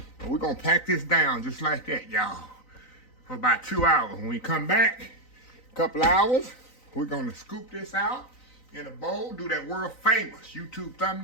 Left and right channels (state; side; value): late; right; 3.9 ms